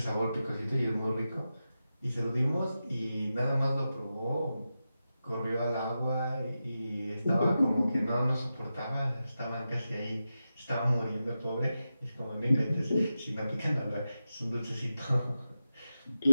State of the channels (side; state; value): both; inverted; correlation -0.91